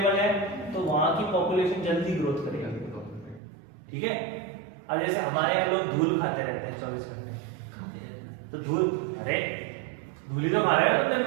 है, तो वहां की पॉपुलेशन जल्दी ग्रोथ करेगी। ठीक है। अब जैसे हमारे यहाँ लोग धूल खाते रहते हैं 24 घंटे, तो धूल, अरे धूल ही तो खा रहे हो तुम दिन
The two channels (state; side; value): drops out; left; at 3.4 s